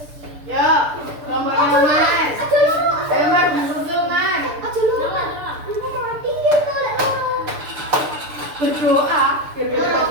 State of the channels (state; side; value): late; left; 6.8 ms